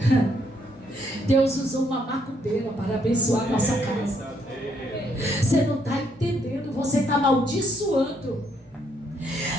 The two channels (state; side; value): normal; both; correlation 0.72